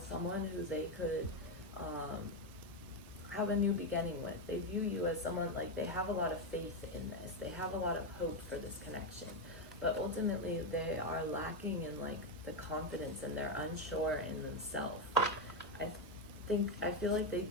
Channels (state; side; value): normal; both; correlation 0.07